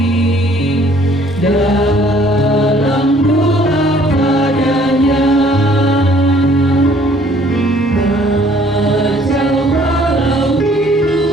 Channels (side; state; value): both; normal; correlation 0.59